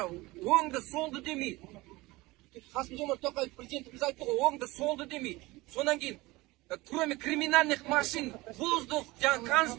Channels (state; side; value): quieter; left; 21.0 dB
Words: оңды солды демей, Қасым-Жомарт Тоқаев президентіміз айтты ғой, оңды солды демей. Сонан кейін, кроме криминальных машин, воздух, жаңа